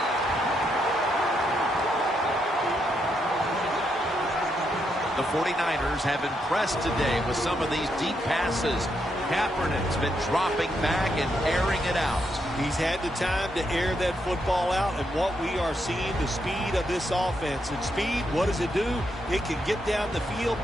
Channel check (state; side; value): normal; both; correlation 0.79